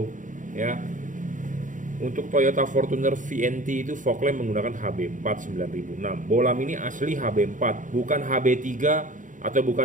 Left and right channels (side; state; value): left; late; 0.37 ms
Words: ya. Untuk Toyota Fortuner VNT itu fog lamp menggunakan HB4 9006. Bolam ini asli HB4, bukan HB3 atau